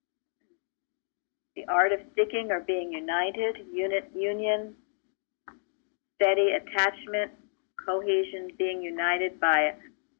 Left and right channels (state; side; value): silent; right; digital silence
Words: the art of sticking or being united, union, steady attachment, cohesion, being united by